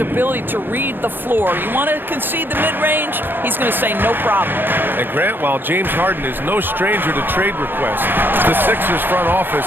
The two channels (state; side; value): late; left; 0.097 ms